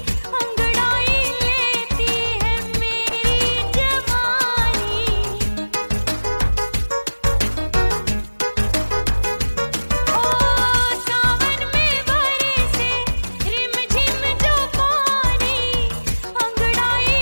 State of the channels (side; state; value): both; inverted; correlation -1.00